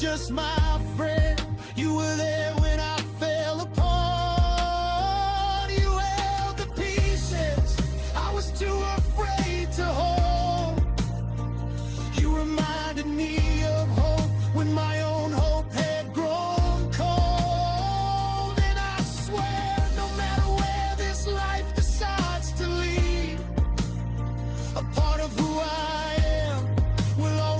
my friend, you were there when I fell apart. You held the pieces I was too afraid to hold. You reminded me of hope when my own hope had grown cold. And I swear, no matter where this life decides to lead, a part of who I am will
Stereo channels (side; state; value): both; identical; correlation 1.00